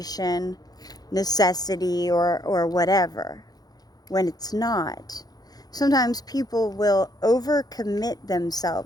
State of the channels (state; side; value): late; right; 0.19 ms